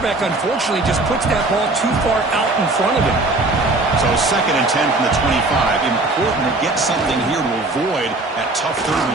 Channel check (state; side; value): quieter; left; 3.0 dB